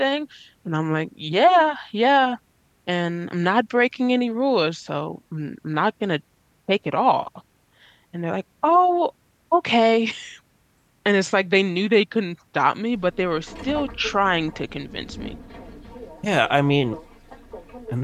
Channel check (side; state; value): both; identical; correlation 1.00